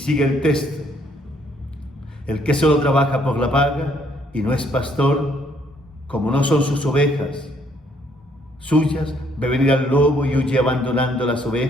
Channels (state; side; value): normal; both; correlation 0.67